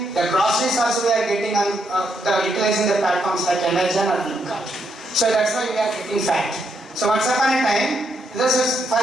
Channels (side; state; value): both; normal; correlation 0.78